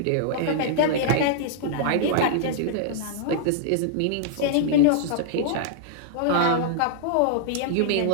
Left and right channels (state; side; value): different; both; correlation -0.01